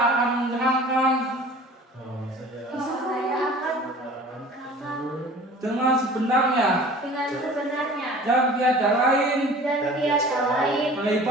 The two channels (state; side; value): normal; both; correlation 0.44